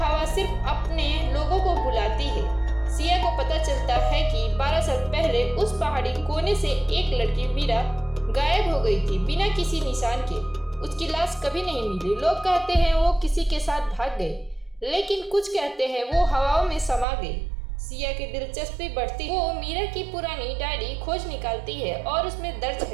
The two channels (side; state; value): left; drops out; at 17.1 s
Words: सिर्फ अपने लोगों को बुलाती है। सिया को पता चलता है कि 12 साल पहले उस पहाड़ी कोने से एक लड़की मीरा गायब हो गई थी बिना किसी निशान के। उसकी लाश कभी नहीं मिली। लोग कहते हैं वो किसी के साथ भाग गई, लेकिन कुछ कहते हैं वो हवाओं में समा गई। सिया की दिलचस्पी बढ़ती, वो मीरा की पुरानी डायरी खोज निकालती है और उसमें दर्ज